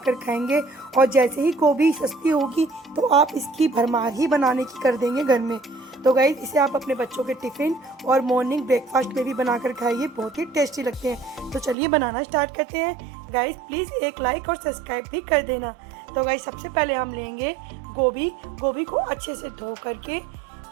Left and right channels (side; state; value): left; drops out; at 11.8 s